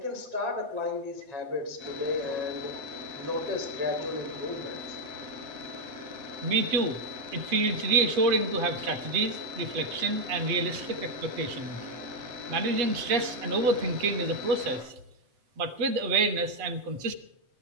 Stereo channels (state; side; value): late; left; 7.8 ms